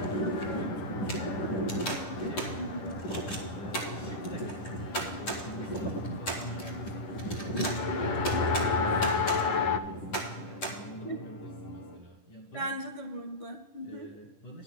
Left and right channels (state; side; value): late; right; 10 ms